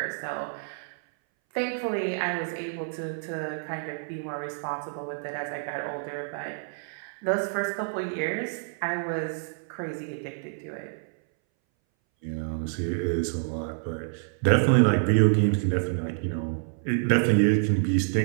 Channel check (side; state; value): left; silent; 59 dB below the other